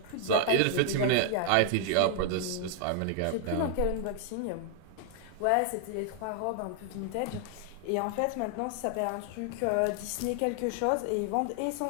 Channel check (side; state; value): both; different; correlation 0.00